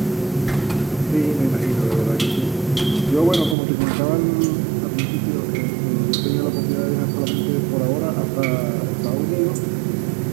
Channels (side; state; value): left; drops out; at 3.6 s